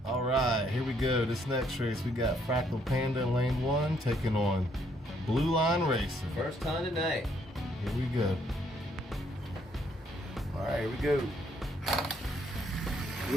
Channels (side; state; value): both; normal; correlation 0.69